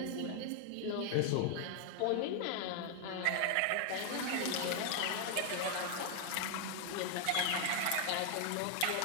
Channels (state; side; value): different; both; correlation 0.01